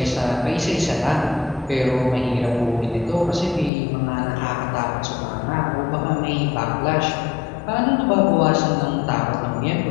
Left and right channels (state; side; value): drops out; right; at 3.7 s